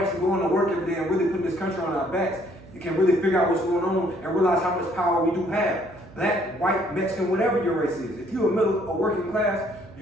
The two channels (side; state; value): right; noise; hum, 21 dB below the sound